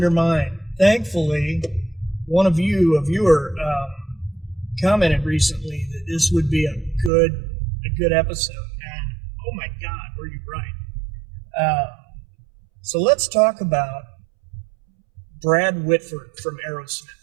mine. Thankfully, one of you, a viewer, commented recently that this would be a good episode. And oh my God, were you right? So let's talk about Brad Whitford from Aerosmith.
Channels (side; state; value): left; drops out; at 7.1 s